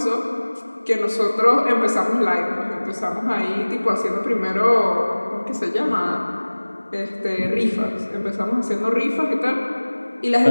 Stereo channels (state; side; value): inverted; both; correlation -1.00